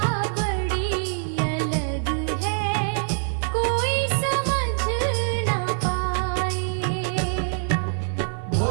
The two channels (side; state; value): left; silent; digital silence